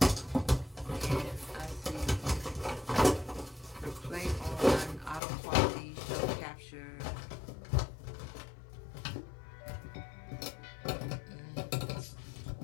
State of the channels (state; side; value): drops out; right; at 5.2 s